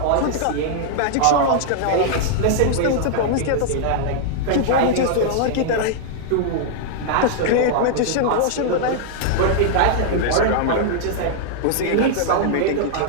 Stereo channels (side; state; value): both; different; correlation -0.01